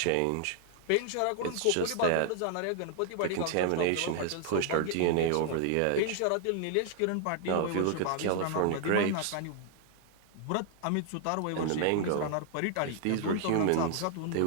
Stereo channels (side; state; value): both; different; correlation 0.00